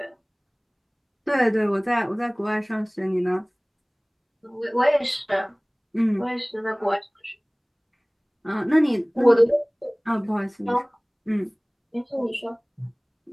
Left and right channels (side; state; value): both; identical; correlation 1.00